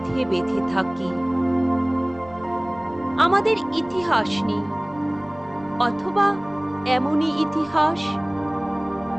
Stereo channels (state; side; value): noise; right; rumble, 24 dB below the sound